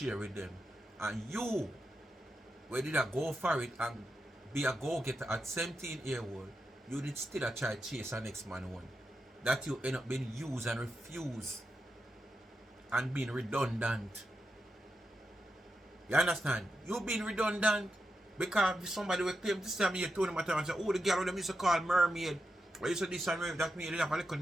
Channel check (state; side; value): normal; both; correlation 0.87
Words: with them. And you, where did I go for it and be a go-getter at 17-year-old, you did still try to chase a next man one. That you end up being used and refused and being redundant. You understand? You being redundant because somebody will claim this time you told them and say, oh, the girl them used to call mermaid. Or you said this and that mean they have a little